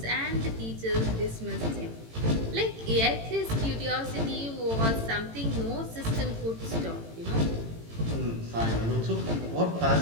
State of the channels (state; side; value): late; left; 18 ms